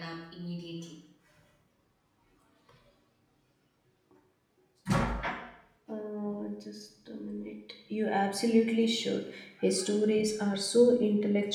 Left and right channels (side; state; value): both; identical; correlation 1.00